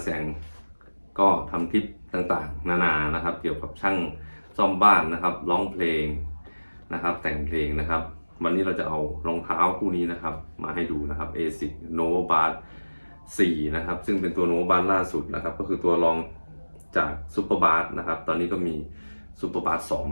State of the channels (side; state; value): both; inverted; correlation -1.00